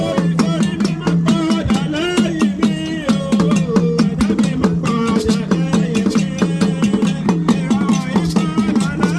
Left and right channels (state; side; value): identical; both; correlation 1.00